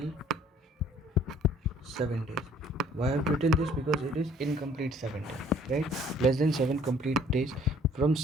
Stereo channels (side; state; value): both; normal; correlation 0.57